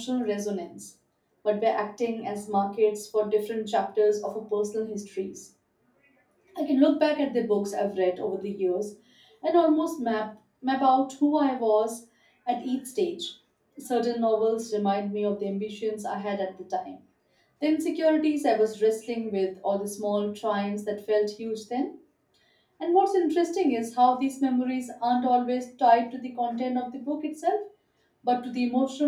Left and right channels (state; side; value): identical; both; correlation 1.00